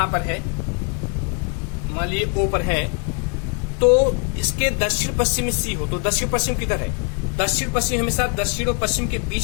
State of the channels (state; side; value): quieter; right; 37.3 dB